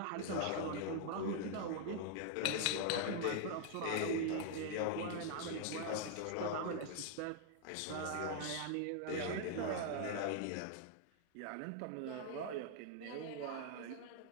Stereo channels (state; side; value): different; both; correlation 0.00